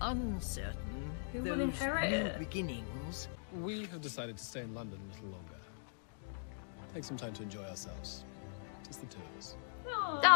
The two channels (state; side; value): silent; right; digital silence